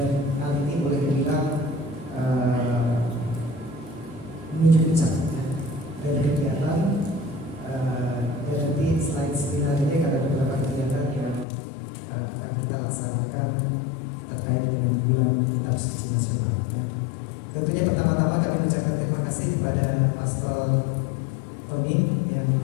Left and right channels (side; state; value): right; drops out; at 11.5 s